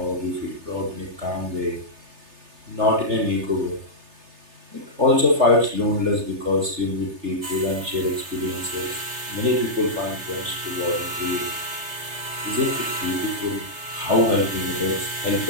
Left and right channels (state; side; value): late; left; 3.3 ms